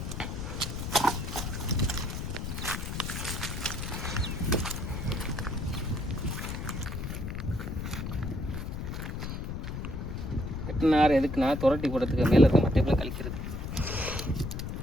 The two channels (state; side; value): noise; left; rumble, 5 dB below the sound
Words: வெட்டினார். எதுக்குன்னா துரட்டி போடுறதுக்கு, மேலே இருக்க மட்டைப்பில் கழிக்கிறது.